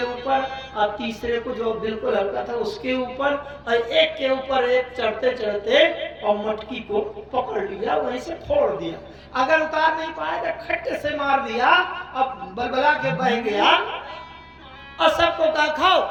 ऊपर और तीसरे को जो बिल्कुल हल्का था उसके ऊपर और एक के ऊपर एक चढ़ते चढ़ते और मटकी को पकड़ लिया, वहीं से फोड़ दिया। अगर उतार नहीं पाए तो खट्टे से मार दिया, अब बलबला के बह गया और सबको कहा खाओ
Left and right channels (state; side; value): identical; both; correlation 1.00